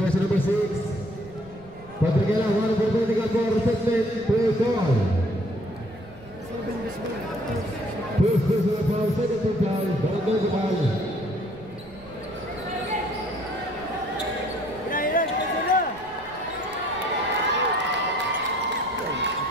number 6, Patrigela, one for vertical for reception, play call. First personal foul, second foul, barangay foul.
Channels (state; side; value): noise; right; rumble, 22 dB below the sound